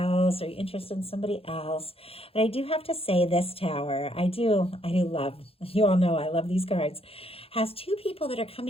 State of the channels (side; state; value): right; late; 0.28 ms